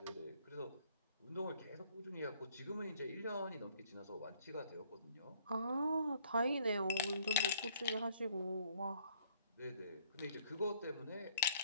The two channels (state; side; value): inverted; both; correlation -0.63